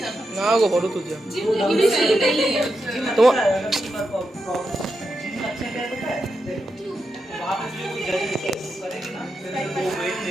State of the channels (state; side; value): normal; both; correlation 0.86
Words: না গো ফটো তুলছে তোমার